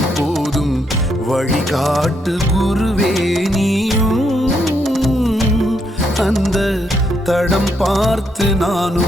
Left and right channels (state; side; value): normal; both; correlation 0.77